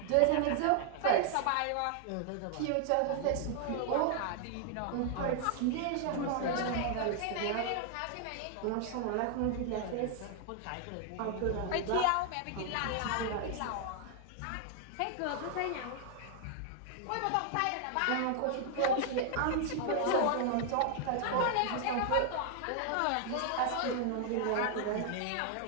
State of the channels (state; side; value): different; both; correlation 0.00